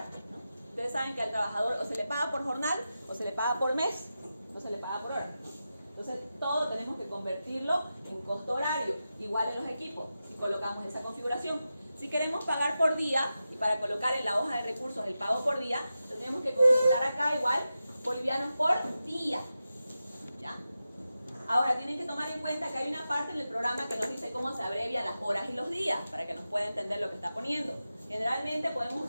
¿no? Ustedes saben que al trabajador o se le paga por jornal, o se le paga por mes, o se le paga por hora, ¿no? Entonces, todo tenemos que convertirlo en costo horario, igual en los equipos, y colocamos esa configuración. Si queremos pagar por día, y para colocar en la hoja de recursos el pago por día, tenemos que configurar acá igual bolivianos por día, ¿ya? Ahora, tienen que tomar en cuenta que hay una parte en el programa que nos dice cómo se abrevian las horas y los días, para que nos pueda entender lo que está poniendo. Generalmente podemos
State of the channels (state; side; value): inverted; both; correlation -0.91